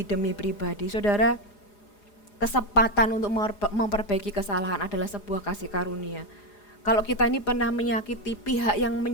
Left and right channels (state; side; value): late; right; 4.9 ms